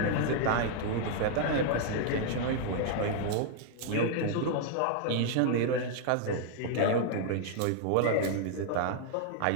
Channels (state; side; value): different; both; correlation 0.00